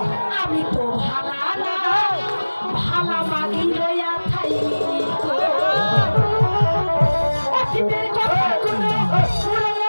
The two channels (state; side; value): inverted; both; correlation -1.00